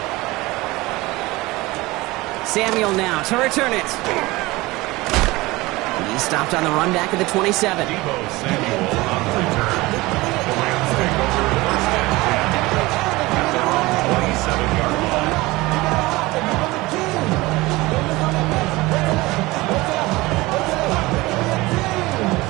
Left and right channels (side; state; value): left; quieter; 20.8 dB